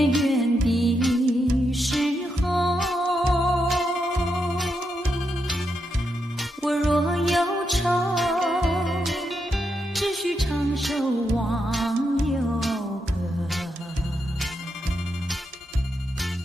圆的时候。我若忧愁，只需唱首忘忧歌。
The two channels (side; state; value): both; normal; correlation 0.83